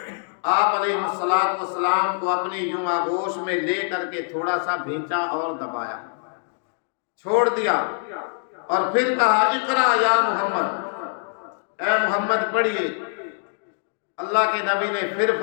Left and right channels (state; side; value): silent; right; digital silence